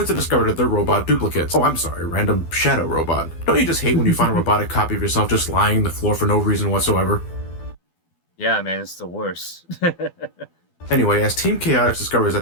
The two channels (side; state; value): right; late; 12 ms